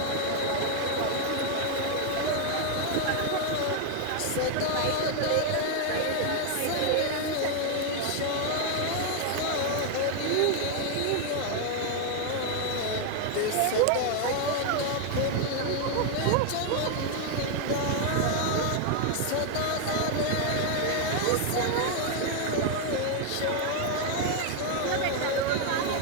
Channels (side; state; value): both; different; correlation 0.01